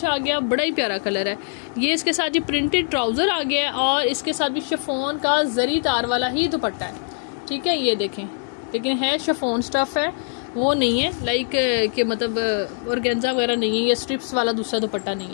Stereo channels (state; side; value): silent; right; 64 dB below the other